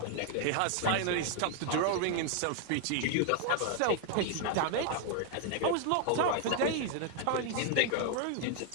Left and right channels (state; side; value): different; both; correlation 0.00